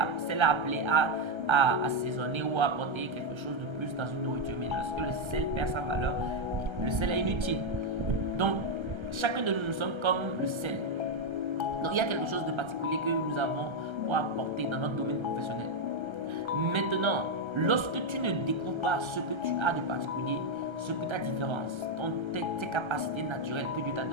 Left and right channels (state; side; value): late; left; 1.3 ms